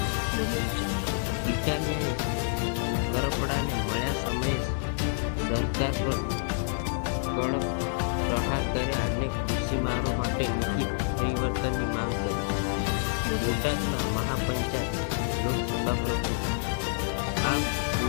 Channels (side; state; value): right; silent; 59 dB below the other